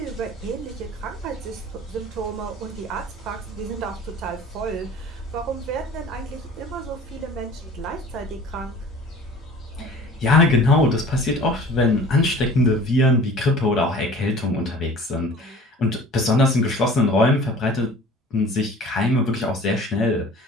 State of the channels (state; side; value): normal; both; correlation 0.45